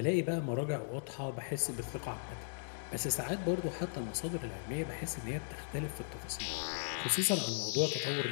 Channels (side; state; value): right; silent; digital silence